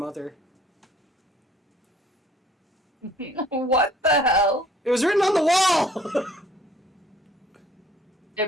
What the hell? It was written on the wall!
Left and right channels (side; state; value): both; normal; correlation 0.57